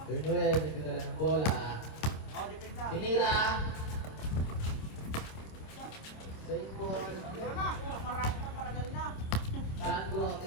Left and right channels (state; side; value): late; right; 26 ms